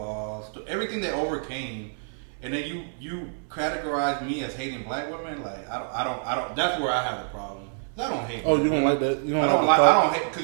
to everything they overcame, and then you categorize me as hating black women, like I don't. That's where I have a problem. I don't hate. Oh, you don't like that? You don't I don't hate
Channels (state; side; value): silent; left; 60 dB below the other